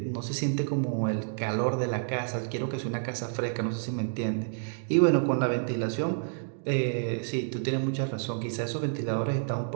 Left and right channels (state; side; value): silent; left; digital silence